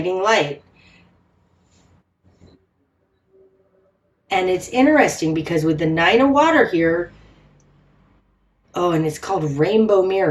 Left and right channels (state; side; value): identical; both; correlation 1.00